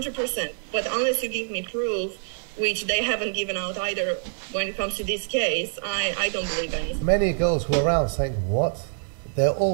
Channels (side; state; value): left; silent; 61 dB below the other